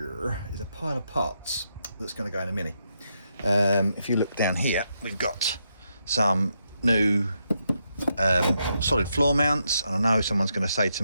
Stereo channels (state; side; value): inverted; both; correlation -0.81